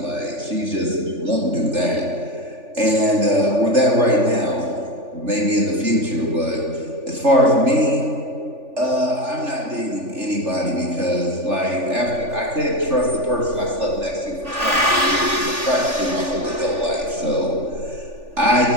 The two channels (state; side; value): late; left; 3.4 ms